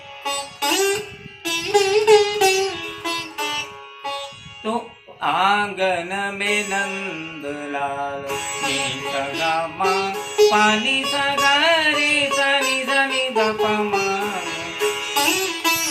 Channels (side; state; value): both; identical; correlation 1.00